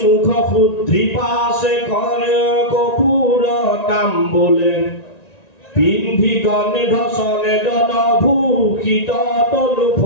মুখ শুদ্ধি পাছে কৰে কপুৰ তাম্বুলে পিন্ধি গন্ধ চনে দন ভূষিত তনু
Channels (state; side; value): late; right; 1.9 ms